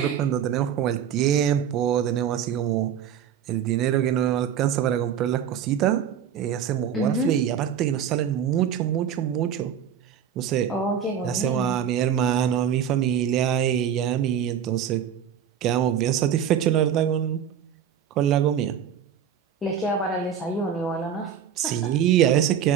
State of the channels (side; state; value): left; quieter; 8.7 dB